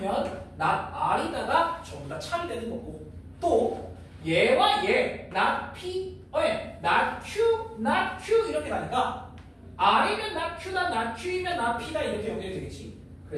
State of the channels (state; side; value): identical; both; correlation 1.00